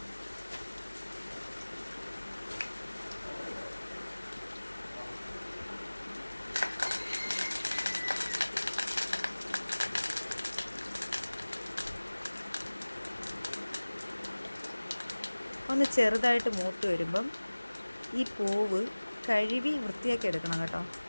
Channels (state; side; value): inverted; both; correlation -1.00